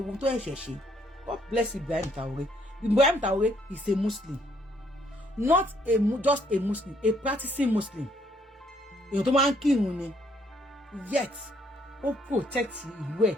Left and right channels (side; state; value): both; normal; correlation 0.68